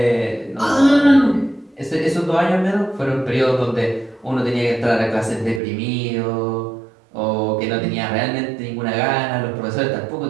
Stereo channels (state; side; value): drops out; left; at 5.6 s